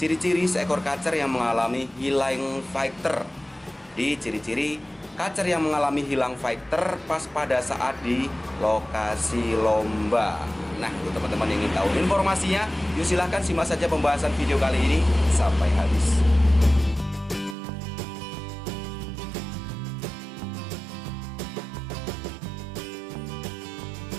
ciri-ciri seekor kacer yang mengalami hilang fighter. Di ciri-ciri kacer yang mengalami hilang fighter pas pada saat di lokasi lomba. Nah, untuk teman-teman yang ingin tahu informasinya, yuk silahkan simak saja pembahasan video kali ini sampai habis.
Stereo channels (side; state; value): left; drops out; at 17.6 s